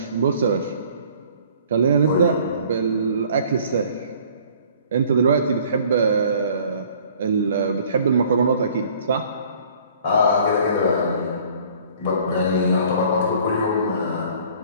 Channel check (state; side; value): inverted; both; correlation -0.54